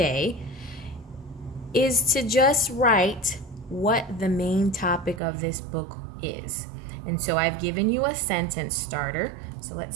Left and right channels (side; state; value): left; drops out; at 5.2 s